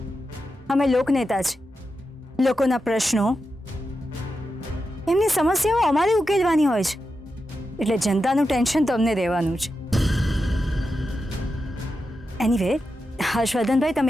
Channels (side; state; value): both; normal; correlation 0.89